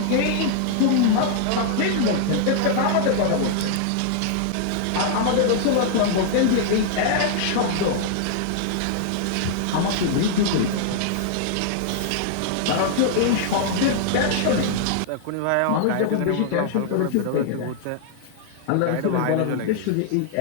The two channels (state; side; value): different; both; correlation -0.01